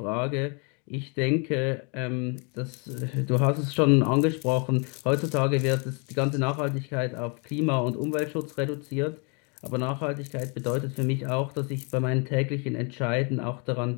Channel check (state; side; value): quieter; right; 34.5 dB